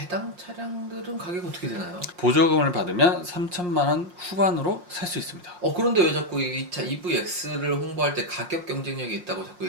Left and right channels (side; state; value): left; late; 5.6 ms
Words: 차량들은 가격이 어떻게 되나요? 보조금을 받으면 3천만 원 후반으로 살 수 있습니다. 그런데 왜 자꾸 이 차 EVX를 홍보할 때 가격 경쟁력이 있다고 자꾸